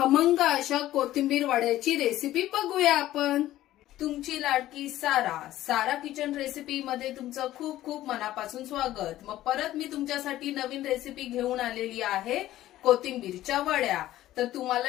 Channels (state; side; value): quieter; right; 14.4 dB